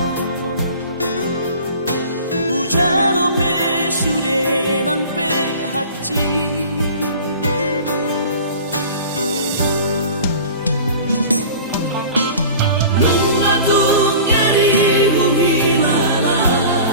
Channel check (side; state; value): both; inverted; correlation -0.41